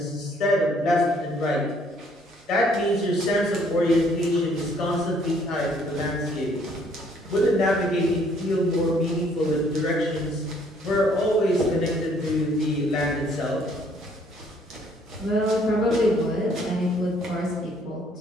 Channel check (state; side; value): normal; both; correlation 0.63